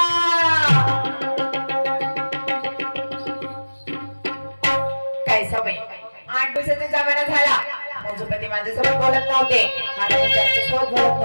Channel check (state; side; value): inverted; both; correlation -1.00